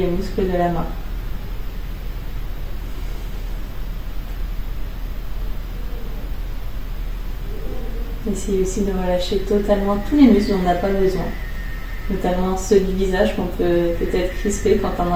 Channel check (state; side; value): identical; both; correlation 1.00